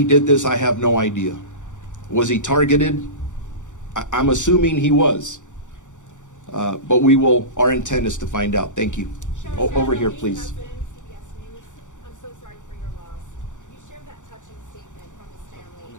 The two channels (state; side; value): late; right; 0.86 ms